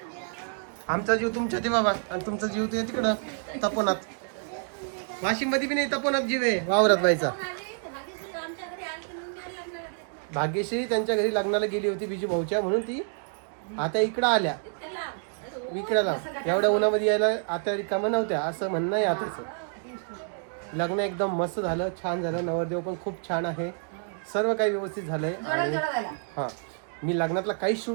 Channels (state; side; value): silent; left; 59 dB below the other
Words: आमचा जीव तुमच्या ते बाबा, आणि तुमचा जीव ते तिकडं तपोनात. वाशिम मध्ये बी नाही तपोनात जीव आहे वावरात व्हायचा. भाग्यश्री त्यांच्या घरी लग्नाला गेली होती बिजू भाऊच्या, म्हणून ती आता इकडं आल्या विकड्याला. एवढ्या उन्हामध्ये यायला आता रिकामा नव्हत्या, असं म्हणणं आहे आताच. लग्न एकदम मस्त झालं, छान झालं. नवरदेव पण खूप छान आहे. सर्व काही व्यवस्थित झालंय. आणि हां, मी लग्नातला काहीच